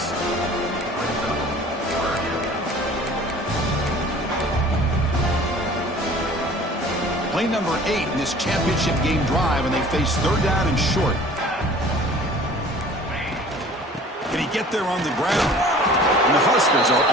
Play number 8 in this championship game drive, and they face third down and short. Can he get there on the ground? And the Huskers are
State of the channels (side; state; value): both; normal; correlation 0.47